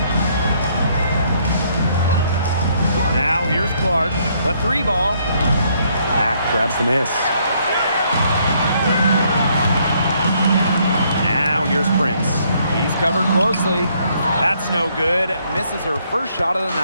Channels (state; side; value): inverted; both; correlation -0.69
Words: Now here's Clark. The three ball. Mack grabs the miss. Now here's Prince. He's covered closely. That's no good. Misses her first shot of the